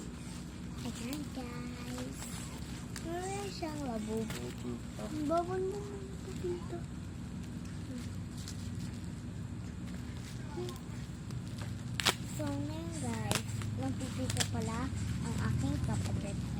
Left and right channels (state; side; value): identical; both; correlation 1.00